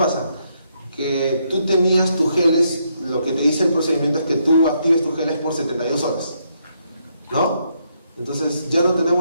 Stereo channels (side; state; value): both; inverted; correlation -0.76